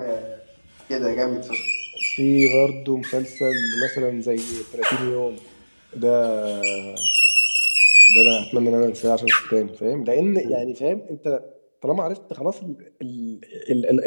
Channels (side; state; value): both; inverted; correlation -1.00